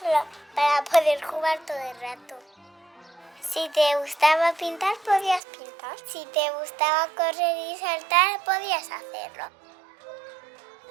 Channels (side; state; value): left; drops out; at 5.4 s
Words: para poder jugar todo el rato. Si te gustaba pintar, podías pintar. Si te gustaba correr y saltar, podías hacerlo.